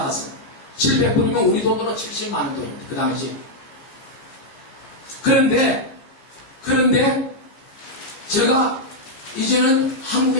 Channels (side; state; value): right; late; 15 ms